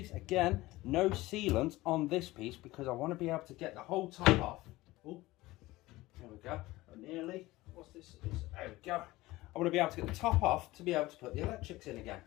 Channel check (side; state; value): right; quieter; 18.8 dB